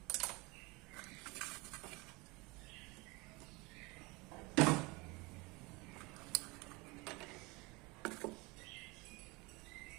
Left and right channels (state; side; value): quieter; left; 25.4 dB